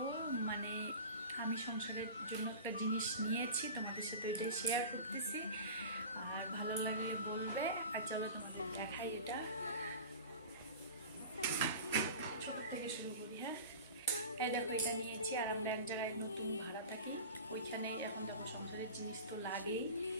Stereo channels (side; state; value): both; inverted; correlation -0.34